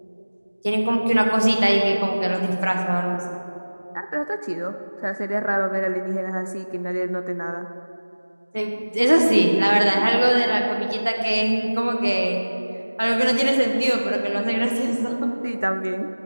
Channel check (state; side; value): inverted; both; correlation -1.00